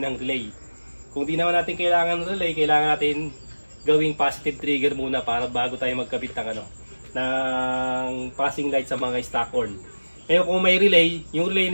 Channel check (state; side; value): inverted; both; correlation -1.00